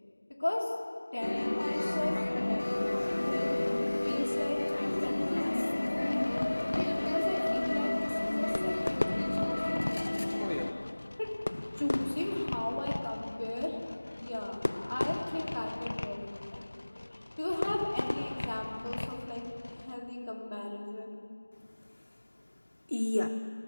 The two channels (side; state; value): both; inverted; correlation -1.00